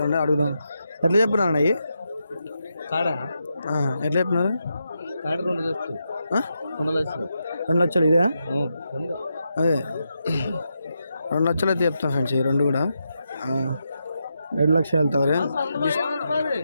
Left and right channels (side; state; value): both; inverted; correlation -0.85